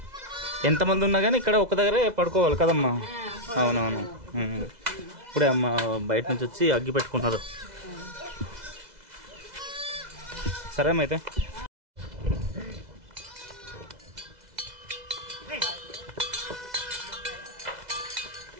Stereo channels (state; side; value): late; left; 2.0 ms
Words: ఎంతమంది ఉన్నా కానీ ఇక్కడ ఒక దగ్గరే పడుకోవాలి కదమ్మా. అవునవును. ఇప్పుడే అమ్మ బయట నుంచి వచ్చి అగ్గి పెట్టుకుంటున్నారు. సరే అమ్మ అయితే.